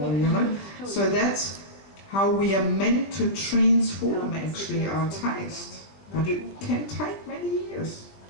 you know. So that's how we are meant to transform actually our taste. But it can take many years,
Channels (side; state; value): right; late; 21 ms